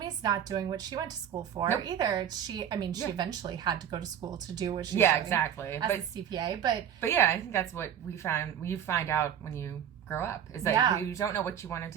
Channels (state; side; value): quieter; left; 9.4 dB